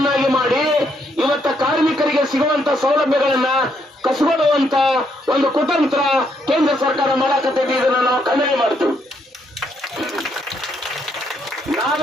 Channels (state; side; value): normal; both; correlation 0.74